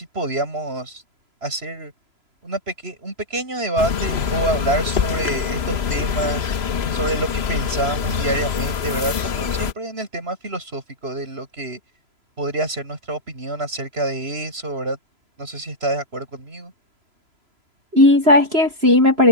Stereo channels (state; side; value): late; left; 3.0 ms